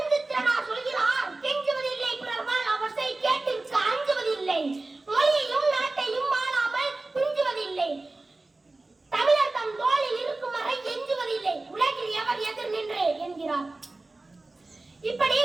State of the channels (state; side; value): quieter; left; 3.1 dB